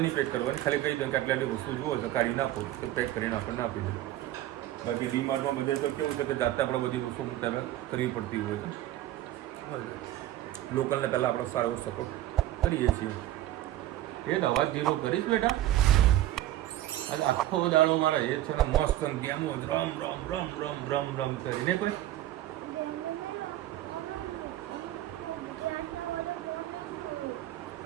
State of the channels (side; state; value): left; quieter; 14.1 dB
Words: નહીં પેક કરવાની, ખાલી કહી દો કે આટલી વસ્તુ જુઓ છે કાઢી નાખો તો પેક કરીને આપણને આપી દો. બાકી ડીમાર્ટમાં બધે તો કેવું છે કે જાતે આપણે બધી વસ્તુ તમે કરવી પડતી હોય છે. લોકલને પહેલાં આપણે સારો એવો સપોર્ટ કરીએ છીએ. એ તો અવાજ ધીરો કરીશ બેટા. આજે આખો દાડો મારા એ છે ને મસ્ત ગેમો રમ રમ રમ રમ રમ રમ કરીને કોઈ